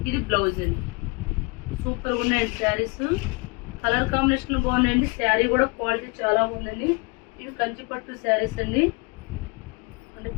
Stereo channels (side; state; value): right; quieter; 29.0 dB